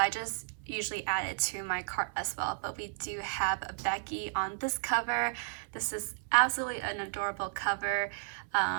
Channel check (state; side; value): silent; left; 56 dB below the other